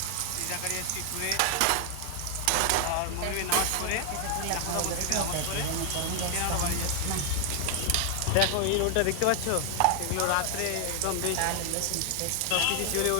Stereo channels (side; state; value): both; different; correlation 0.00